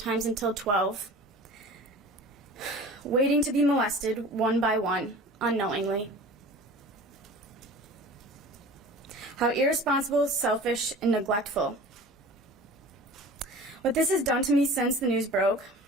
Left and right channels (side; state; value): both; normal; correlation 0.41